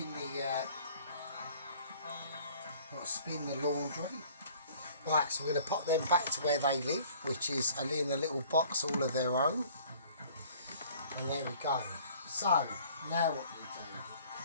the laundry. Right, so we're going to pop them back to where they live, which is in a little box all of their own. And there we go. So now what we do?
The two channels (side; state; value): both; inverted; correlation -0.53